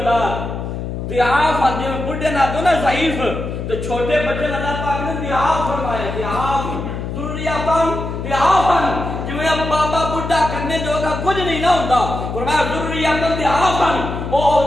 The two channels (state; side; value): noise; left; hum, 5 dB below the sound